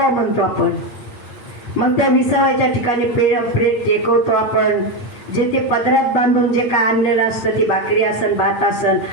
म्हणतो आपण. मग त्या विसाव्याच्या ठिकाणी प्रेत टेकवतो आपण. जे ते पदरात बांधून जे काय आणलेलं असतं, ती भाकरी असन भात असन,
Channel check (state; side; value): late; right; 8.5 ms